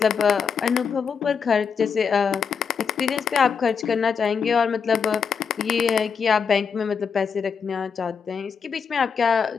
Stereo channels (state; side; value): quieter; right; 6.3 dB